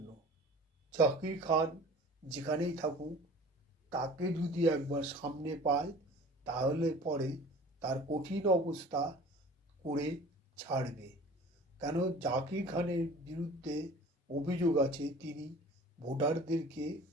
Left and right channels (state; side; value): normal; both; correlation 0.44